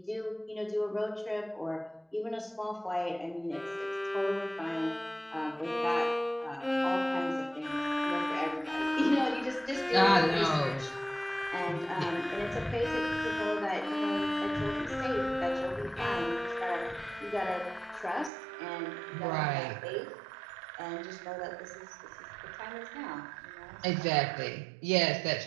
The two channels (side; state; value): left; drops out; at 18.3 s